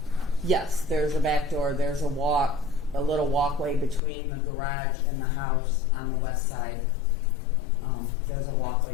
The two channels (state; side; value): drops out; right; at 4.0 s